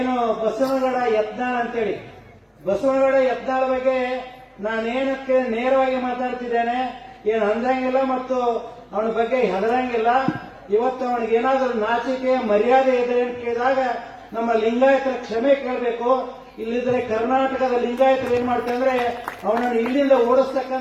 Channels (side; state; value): both; identical; correlation 1.00